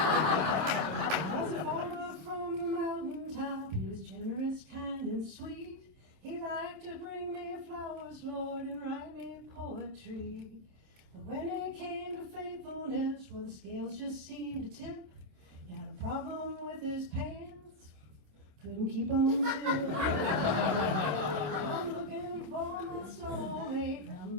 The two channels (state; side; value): late; left; 27 ms